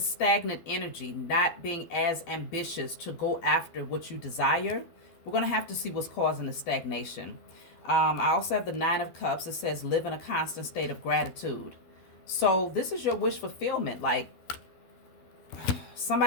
energy, not being as ambitious to go after what you desire. We're going to have to see what's causing the stagnation. I also have the Nine of Cups. It says live in a constant state of gratitude. So this is your wish fulfillment. Like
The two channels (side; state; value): right; late; 12 ms